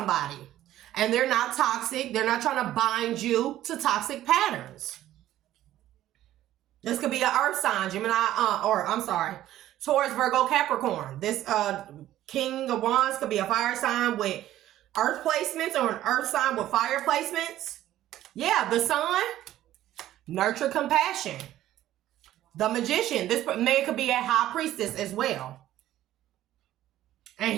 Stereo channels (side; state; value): left; quieter; 13.5 dB